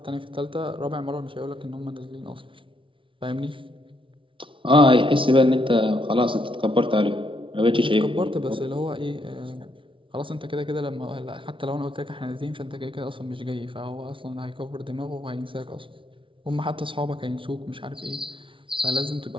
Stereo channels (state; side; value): late; left; 0.25 ms